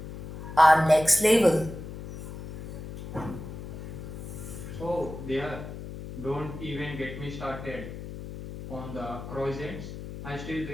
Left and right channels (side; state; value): left; noise; hum, 10 dB below the sound